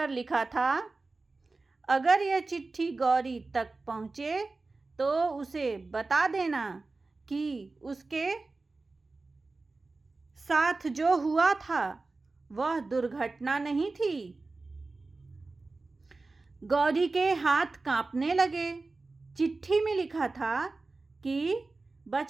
लिखा था, अगर यह चिट्ठी गौरी तक पहुँचे तो उसे बता देना कि उसके साथ जो हुआ था वह दुर्घटना नहीं थी। गौरी के हाथ कांपने लगे। चिट्ठी में लिखा था कि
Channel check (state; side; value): quieter; left; 3.6 dB